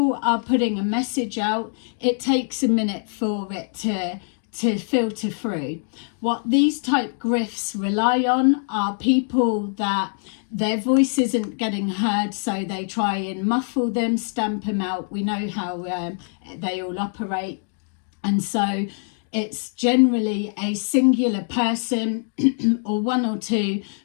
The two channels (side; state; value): right; silent; 58 dB below the other